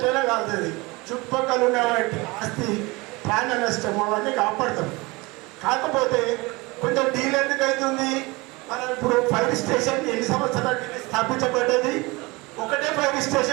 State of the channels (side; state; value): left; quieter; 24.2 dB